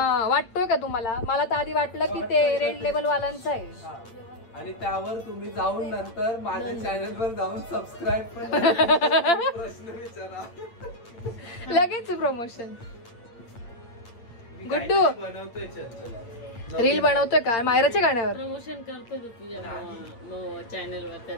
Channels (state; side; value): late; right; 8.7 ms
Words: वाटतोय का तुम्हाला? मला तर आधी वाटलं की ते रेड लेबल वाल्यांचं आहे. आणि त्यावर तुम्ही जाऊन नंतर माझ्या चॅनलवर जाऊन सबस्क्राईब पण प्रश्न विचारा. लगेच प्रमोशन. गुड्डू बनवतोय चंचल. रील बनवतोय का मायराच्या गाण्यावर? प्रमोशन करतो तू तुझ्या